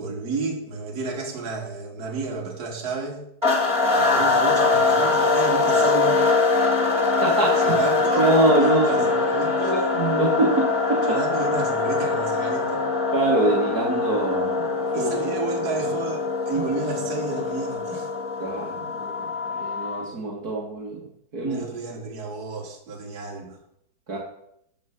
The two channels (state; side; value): late; left; 4.4 ms